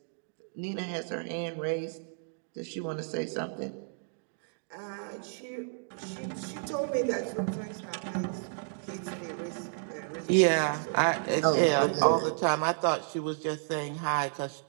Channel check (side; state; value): left; silent; digital silence